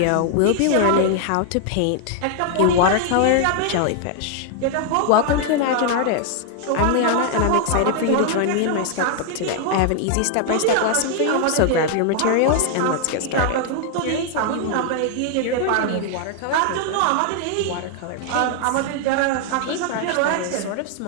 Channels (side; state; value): both; different; correlation 0.00